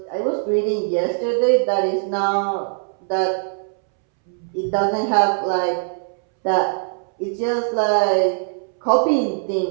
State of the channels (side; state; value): left; silent; 65 dB below the other